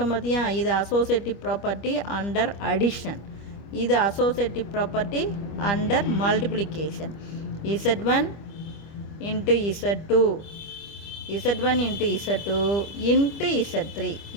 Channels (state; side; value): late; right; 25 ms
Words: பார்த்தியா, இது அசோசியேட்டிவ் ப்ராப்பர்ட்டி அண்டர் அடிஷன். இது associative property under multiplication. Z1 × Z2 × Z3